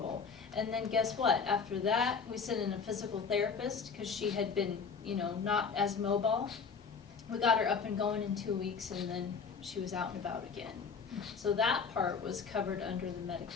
And then guess what? After that, we sent in a physical therapist because she had been, not as mobile. We got her up and going in 2 weeks, and then she was out and about again. So that part was covered under the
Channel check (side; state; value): right; quieter; 5.7 dB